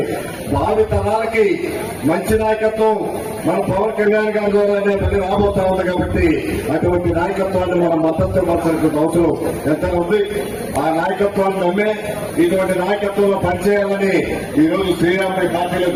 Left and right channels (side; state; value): both; identical; correlation 1.00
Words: భావి తరాలకి మంచి నాయకత్వం మన పవన్ కళ్యాణ్ గారి ద్వారానే మళ్ళీ రాబోతా ఉంది. కాబట్టి అటువంటి నాయకత్వాన్ని మనం మద్దతు ఇవ్వాల్సిన అవసరం ఎంత ఉంది. ఆ నాయకత్వాన్ని నమ్మే ఇటువంటి నాయకత్వంలో పనిచేయాలని ఈ రోజు శ్రీరాముడి పార్టీలో